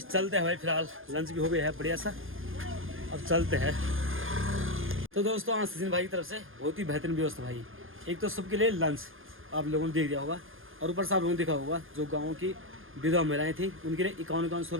हैं भाई। फिलहाल लंच भी हो गया है बढ़िया सा, अब चलते हैं। तो दोस्तों आज सचिन भाई की तरफ से बहुत ही बेहतरीन व्यवस्था भाई। एक तो सबके लिए लंच आप लोगों ने देख दिया होगा, और ऊपर से आप लोगों ने देखा होगा जो गाँव की विधवा महिलाएँ थी उनके लिए 5100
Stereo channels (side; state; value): left; late; 0.59 ms